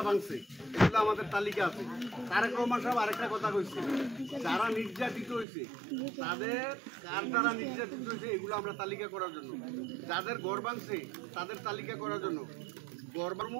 ভাঙছে, এগুলো আমাদের তালিকা আছে। তারেক রহমান সাহেব আরেকটা কথা কইছে, যারা নির্যাতিত হয়েছে তাদের কার দ্বারা নির্যাতিত হয়েছে এগুলো আমরা তালিকা করার জন্য, যাদের ঘর ভাঙছে তাদের তালিকা করার জন্য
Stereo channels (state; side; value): drops out; left; at 5.5 s